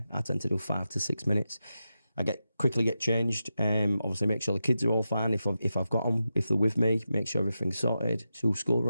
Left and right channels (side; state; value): both; inverted; correlation -0.90